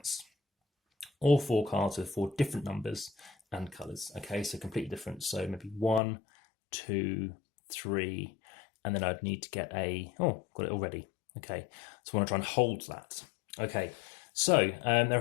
All 4 cards with 4 different numbers and colours. Okay, so completely different. So maybe 1, 2, 3, and then I'd need to get a, oh, got it already. Okay, so I want to try and hold that. Okay. So there are a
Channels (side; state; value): right; drops out; at 6.0 s